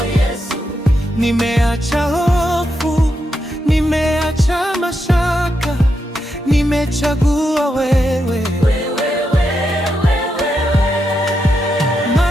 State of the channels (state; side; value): normal; both; correlation 0.84